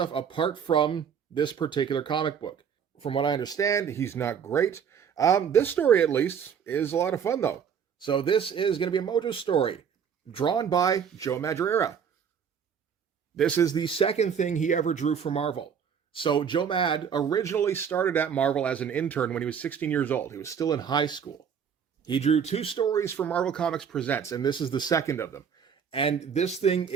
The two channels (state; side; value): quieter; left; 7.4 dB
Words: apart from this particular comic book. From what I understand, he's not great. This story, at least, is a lot of fun, though. So this is going to be a Mojo story, drawn by Joe Madureira. This is the second thing he ever drew for Marvel. So Joe Mad originally started at Marvel as an intern when he was 16 years old. He was still in high school. He drew 2 stories for Marvel Comics Presents, and this is the second of them. And this thing